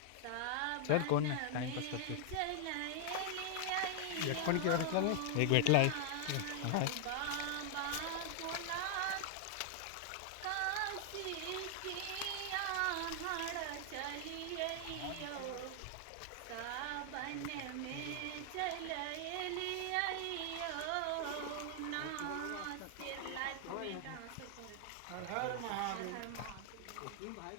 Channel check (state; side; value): different; both; correlation 0.00